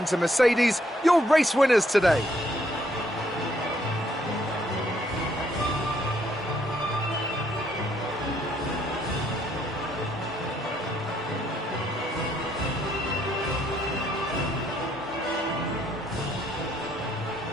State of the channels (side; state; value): both; normal; correlation 0.70